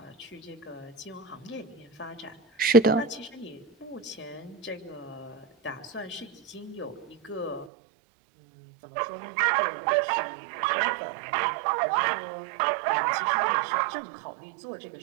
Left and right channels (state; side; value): drops out; left; at 7.7 s